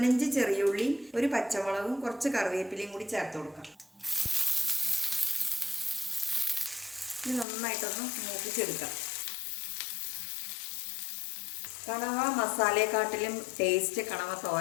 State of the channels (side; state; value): right; drops out; at 7.5 s